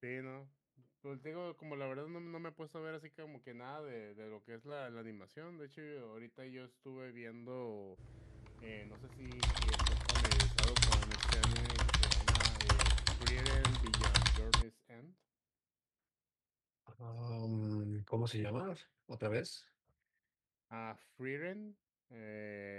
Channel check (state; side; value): identical; both; correlation 1.00